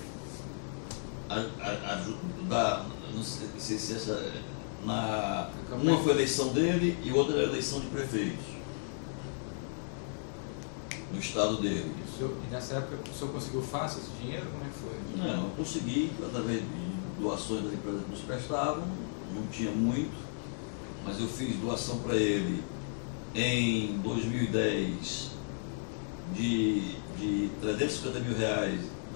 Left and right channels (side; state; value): right; silent; 55 dB below the other